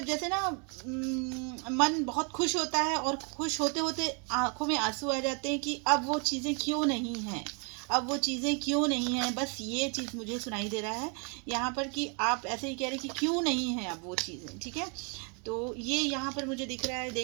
जैसे ना मन बहुत खुश होता है और खुश होते होते आंखों में आंसू आ जाते हैं कि अब वो चीज़ें क्यों नहीं हैं, अब वो चीज़ें क्यों नहीं हैं। बस ये चीज़ मुझे सुनाई दे रहा है यहाँ पर कि आप ऐसे ही कह रहे हैं कि क्यों नहीं है अब वो चीज़ें। ठीक है, तो ये यहाँ पर मुझे दिख रहा है।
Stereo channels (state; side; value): quieter; left; 36.5 dB